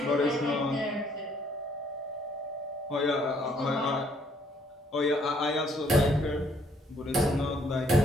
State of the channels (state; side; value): normal; both; correlation 0.66